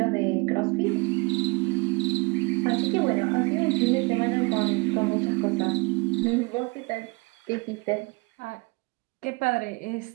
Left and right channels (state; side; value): quieter; left; 27.3 dB